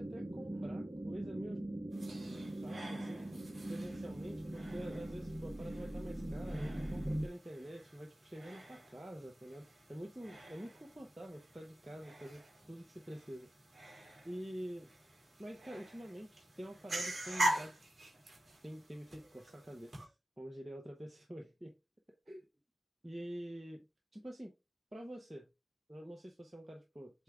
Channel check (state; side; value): normal; both; correlation 0.93